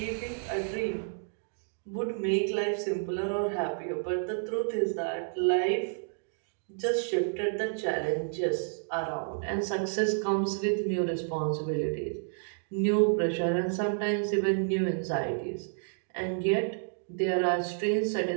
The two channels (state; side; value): silent; left; digital silence